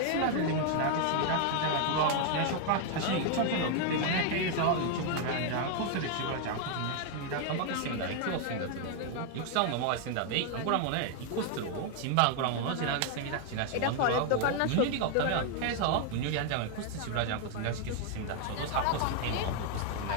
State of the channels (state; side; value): different; both; correlation 0.00